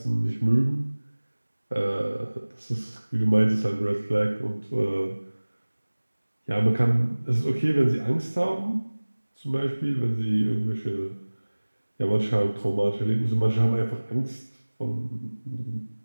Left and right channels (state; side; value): inverted; both; correlation -1.00